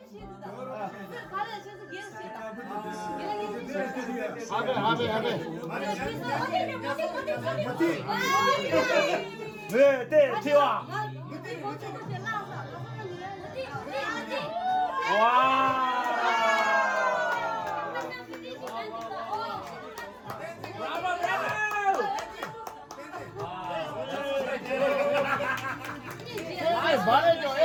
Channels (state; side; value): identical; both; correlation 1.00